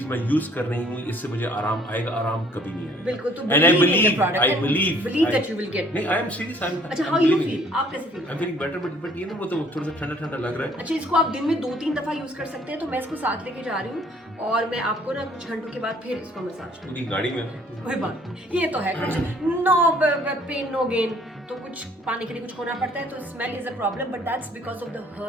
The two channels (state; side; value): normal; both; correlation 0.58